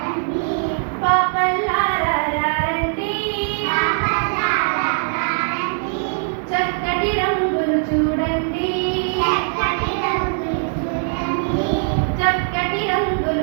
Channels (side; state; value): left; silent; 61 dB below the other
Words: చక్కటి రంగులు చూడండి, చక్కటి